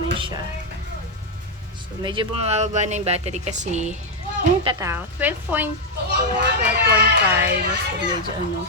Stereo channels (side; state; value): both; normal; correlation 0.02